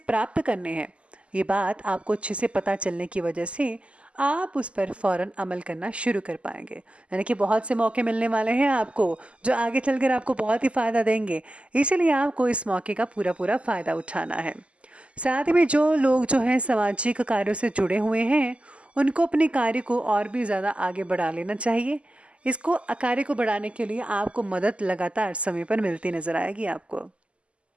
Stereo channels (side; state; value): left; late; 0.057 ms